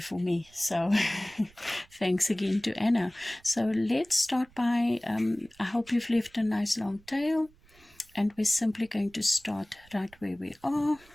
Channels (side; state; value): right; noise; rumble, 28 dB below the sound